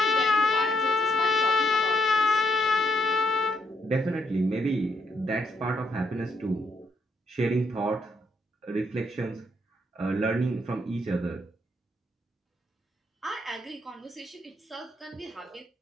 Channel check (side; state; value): both; normal; correlation 0.74